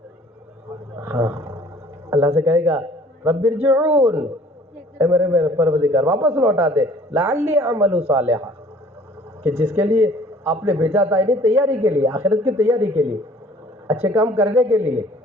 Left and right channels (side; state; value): both; normal; correlation 0.53